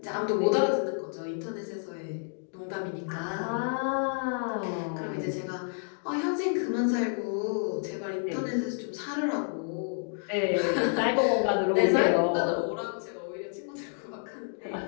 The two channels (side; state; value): right; silent; 58 dB below the other